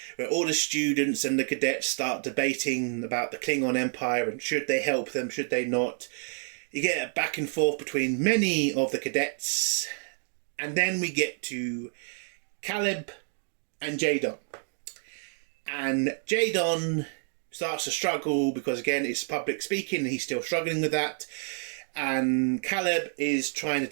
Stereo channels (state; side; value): silent; left; 59 dB below the other